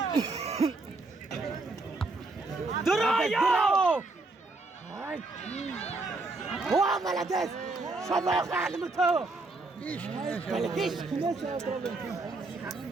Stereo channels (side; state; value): left; quieter; 3.4 dB